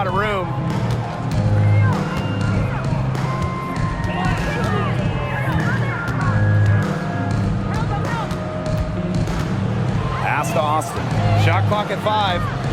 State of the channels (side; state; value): both; identical; correlation 1.00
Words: of room. Pass to Austin. Shot clock at 5.